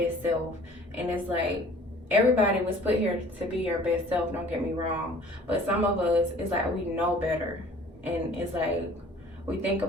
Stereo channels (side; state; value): both; normal; correlation 0.51